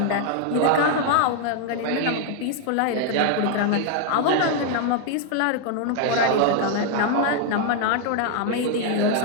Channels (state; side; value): different; both; correlation 0.00